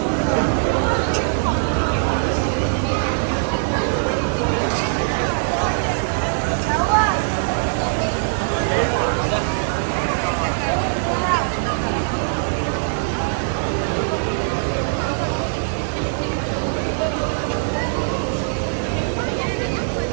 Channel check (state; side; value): silent; left; digital silence